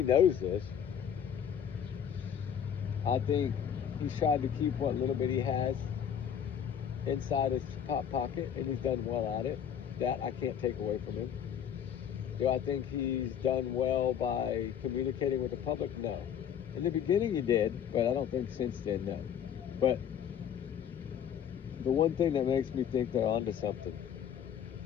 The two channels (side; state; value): right; quieter; 8.8 dB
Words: knows this. I think he's tried to keep what little bit he has inside his top pocket, and he's done well at it. That I can't take away from him. Do I think he's done well by communicating with the public? No. In the beginning he did, but I don't think since then, no. But the one thing that makes me think they're onto something